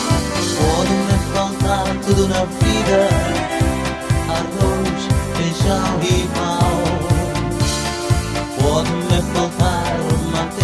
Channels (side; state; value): both; identical; correlation 1.00